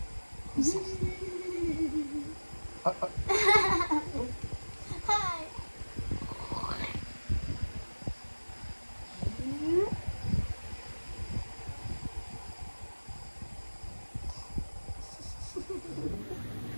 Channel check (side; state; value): both; inverted; correlation -1.00